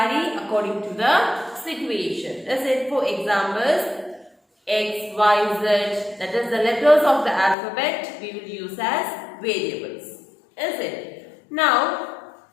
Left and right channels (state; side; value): drops out; right; at 7.6 s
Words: according to the situation. Is it? For examples, X, Y, Z, that is the letters of the alphabet we will use as variables. Is it? Now,